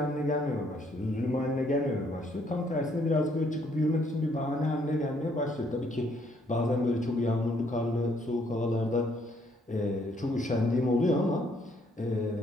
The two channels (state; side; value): normal; both; correlation 0.68